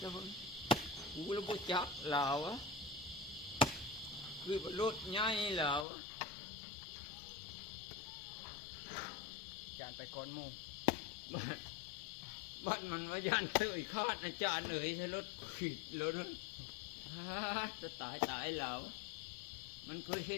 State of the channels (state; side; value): drops out; right; at 5.9 s